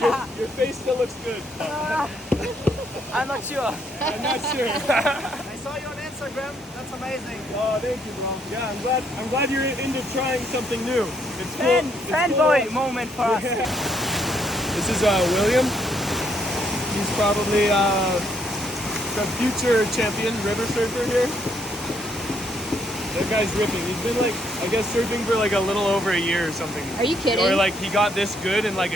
Your face still looks good. I'm not sure. I'm not sure. I saw you on Instagram. That's amazing. Oh, thank you, bro. Yeah, I'm glad you're into trying something new. It's cool. It's Fanboy cool. moment for us. This is William. He's probably the future champion river surfer here. That guy's ripping. He's been like, I guess, surfing for like a little over a year or something. Are you kidding? Or like he got this good in like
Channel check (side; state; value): both; normal; correlation 0.71